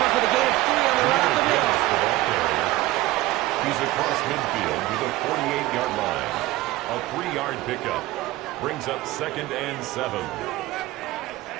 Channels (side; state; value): left; quieter; 17.4 dB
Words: up with a gain of 3 on the run up the middle. He's across midfield to the 48-yard line. A 3-yard pickup brings up 2nd and 7.